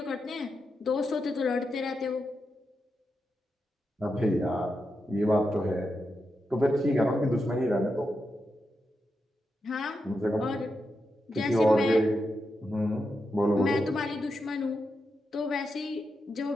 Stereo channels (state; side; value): normal; both; correlation 0.86